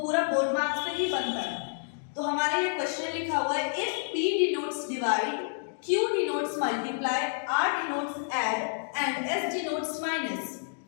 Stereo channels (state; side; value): silent; right; digital silence